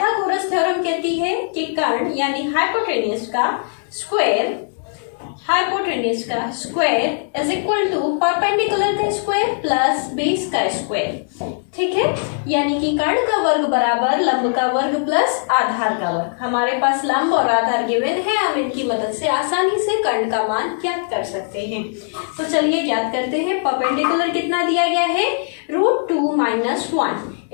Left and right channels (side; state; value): right; silent; digital silence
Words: थ्योरम कहती है कि कर्ण यानी हाइपोटेन्यूज का square is equal to perpendicular का स्क्वायर प्लस बेस का स्क्वायर. ठीक है, यानी कि कर्ण का वर्ग बराबर लंब का वर्ग प्लस आधार का वर्ग. हमारे पास लंब और आधार गिवन है, हम इनकी मदद से आसानी से कर्ण का मान ज्ञात कर सकते हैं. तो चलिए ज्ञात करते हैं. परपेंडिकुलर कितना दिया गया है, √2 - 1,